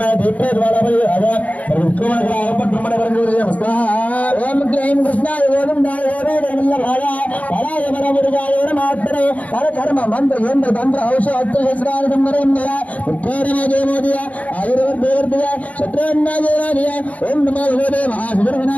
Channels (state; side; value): late; right; 0.070 ms